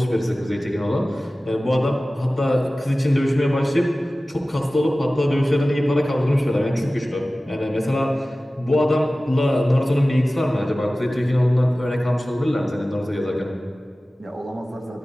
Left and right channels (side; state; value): both; normal; correlation 0.97